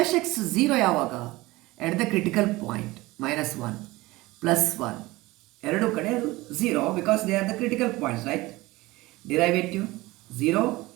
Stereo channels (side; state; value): left; quieter; 20.1 dB